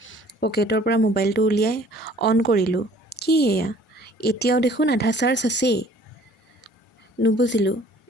পকেটৰ পৰা মোবাইলটো উলিয়াই অন কৰিলোঁ। কি এয়া? এতিয়াও দেখোন আধা চাৰ্জ আছেই। নুবুজিলোঁ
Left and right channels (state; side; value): normal; both; correlation 0.54